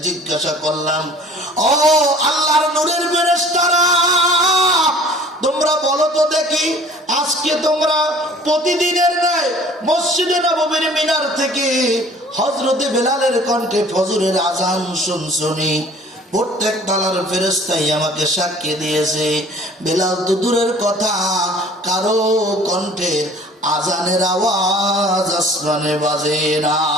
জিজ্ঞাসা করলাম, ও আল্লাহর নূরের ফেরেশতারা, তোমরা বলো তো দেখি, আজকে তোমরা প্রতিদিনের ন্যায় মসজিদে নববীর মিনার থেকে হযরতে বেলালের কণ্ঠে ফজরের আযান শুনছনি? প্রত্যেক তালার ফেরেশতাই আমাকে সাক্ষী দিয়েছে, বেলাল তো দূরের কথা, কারো কণ্ঠের আযানের আওয়াজ আসমানে বাজে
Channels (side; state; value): both; normal; correlation 0.50